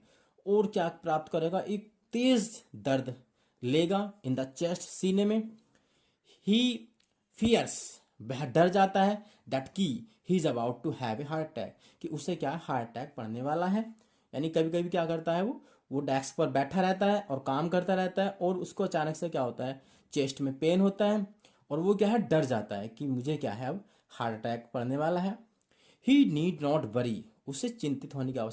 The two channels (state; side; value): identical; both; correlation 1.00